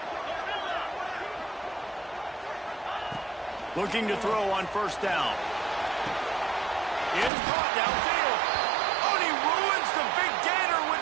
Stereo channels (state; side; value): drops out; left; at 7.3 s